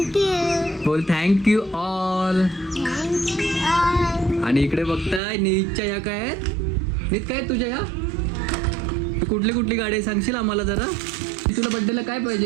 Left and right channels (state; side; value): drops out; left; at 5.2 s